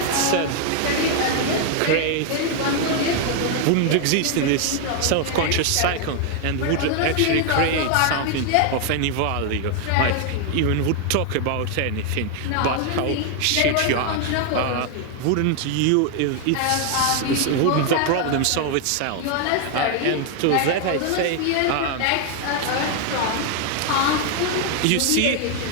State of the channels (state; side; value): different; both; correlation 0.00